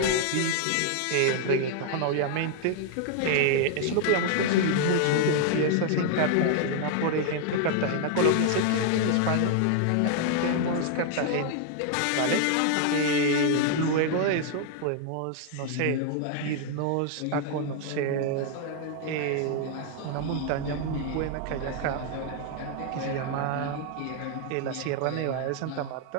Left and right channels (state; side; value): different; both; correlation 0.00